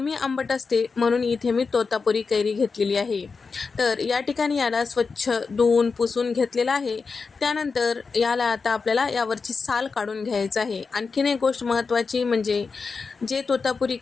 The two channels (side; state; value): right; quieter; 4.8 dB